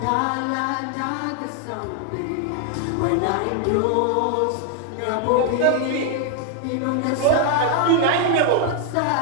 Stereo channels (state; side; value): different; both; correlation 0.00